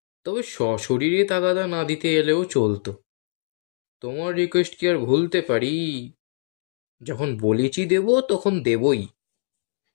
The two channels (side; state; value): right; silent; digital silence